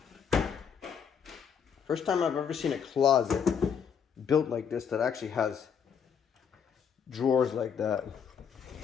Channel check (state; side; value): quieter; right; 7.3 dB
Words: First time I've ever seen a closet built like this that actually has drawers like that.